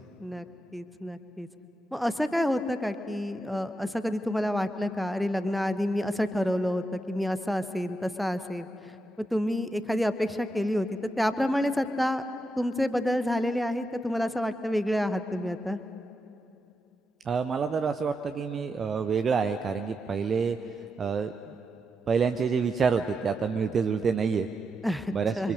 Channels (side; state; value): both; normal; correlation 0.85